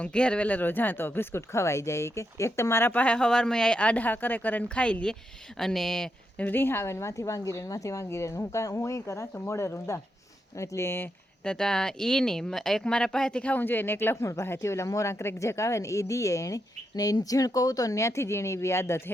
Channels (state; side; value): normal; both; correlation 0.83